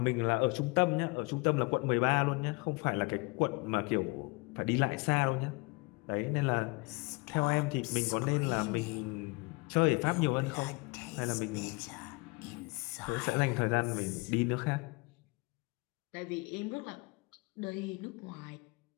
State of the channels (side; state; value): right; quieter; 27.0 dB